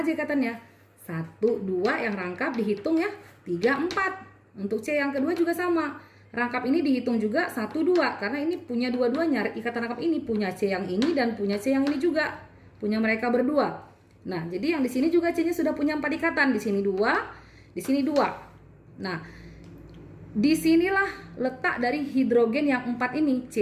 ikatannya? 1 2 yang rangkap dihitung ya, 3 4. Untuk C yang kedua juga sama. Rangkap ini dihitung juga 1 2 karena ini punya dua-duanya. Ikatan rangkap ini punya C yang ini dan punya C yang ini juga. Punya mereka berdua. Nah, jadi yang di sini juga C-nya sudah punya 4 ikatan. Di sini 2, di sini 2. Nah, disinilah letak dari hidrogen yang 4 ini,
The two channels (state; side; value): identical; both; correlation 1.00